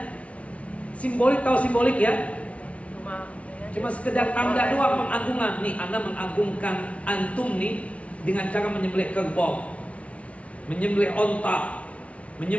simbolik, tahu simbolik ya? Cuma sekedar tanda doang pengagungan. Nih, Anda mengagungkan antum nih dengan cara menyembelih kerbau, menyembelih onta,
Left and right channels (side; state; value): right; late; 0.064 ms